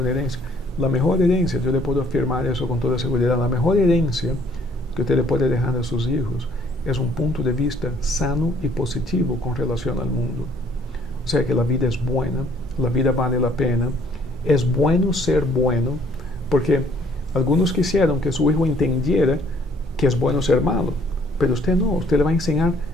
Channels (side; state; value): both; normal; correlation 0.61